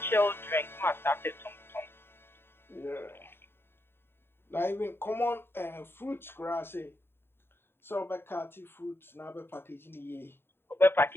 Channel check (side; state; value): right; late; 0.11 ms